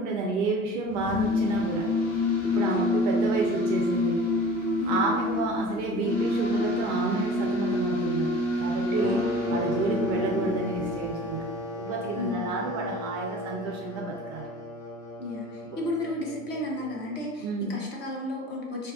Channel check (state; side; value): normal; both; correlation 0.42